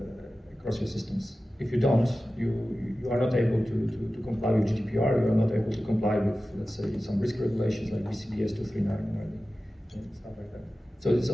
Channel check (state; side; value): normal; both; correlation 0.95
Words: across your systems? If you don't, you are not able to comply with GDPR, you are not able to comply with, let's say, some risk regulations like BCBS 239 and stuff like that. So it's